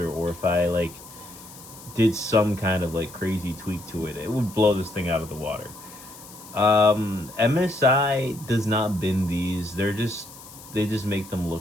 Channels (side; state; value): left; noise; hiss, 18 dB below the sound